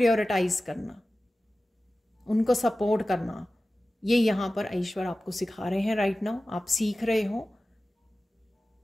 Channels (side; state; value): both; normal; correlation 0.96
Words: करना, उनको सपोर्ट करना, ये यहाँ पर ईश्वर आपको सिखा रहे हैं राइट नाउ। आप सीख रहे हो,